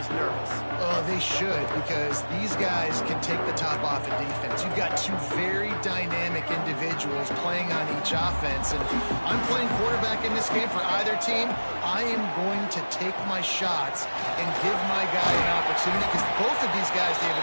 nervous. Oh, they should, because these guys can take the top off of defense. You've got two very dynamic individuals playing on each offense, and I'm playing quarterback in this game for either team. I am going to take my shots and give my guy an opportunity, because both of these guys,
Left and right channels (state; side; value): inverted; both; correlation -1.00